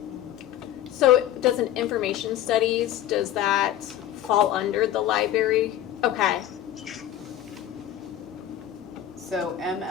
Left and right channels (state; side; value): quieter; right; 11.9 dB